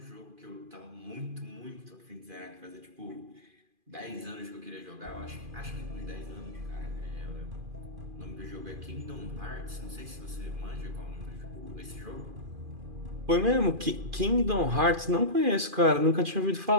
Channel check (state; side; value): late; left; 2.4 ms